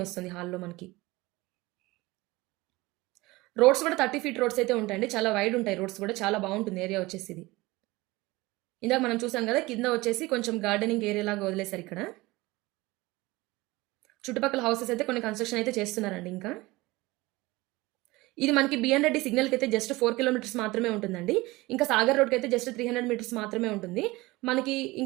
వస్తుంది హాల్‌లో మనకి. రోడ్స్ కూడా 30 ఫీట్ రోడ్స్ అయితే ఉంటాయండి. చాలా వైడ్ ఉంటాయి రోడ్స్ కూడా. చాలా బావుంటుంది ఏరియా వచ్చేసి ఇది. ఇందాక మనం చూసాం గదా! కింద వచ్చేసి కొంచెం గార్డెనింగ్ ఏరియా లాగా వదిలేసారు ఇక్కడ. చుట్టుపక్కల హౌసెస్ అయితే కొన్ని కన్‌స్ట్రక్షన్ అయితే చేస్తున్నారండి ఇంకా. ఇది మనకి బిఎన్ రెడ్డి సిగ్నల్‌కైతే జస్ట్ 4 కిలోమీటర్స్ మాత్రమే ఉంటుందండి. ఇంకా సాగర్ రోడ్‌కైతే జస్ట్ 300 మీటర్స్ మాత్రమే ఉంటుంది. మనకి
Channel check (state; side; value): quieter; left; 21.0 dB